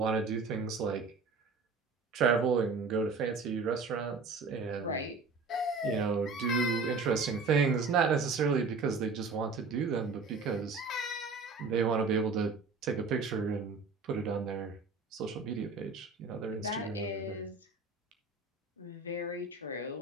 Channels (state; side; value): quieter; left; 4.3 dB